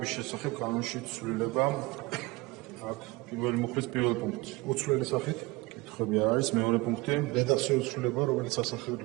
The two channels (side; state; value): left; quieter; 22.1 dB